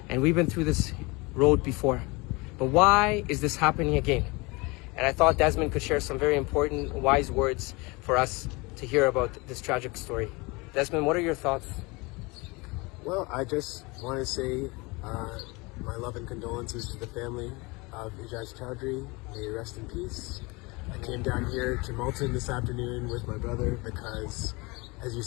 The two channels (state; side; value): quieter; right; 25.8 dB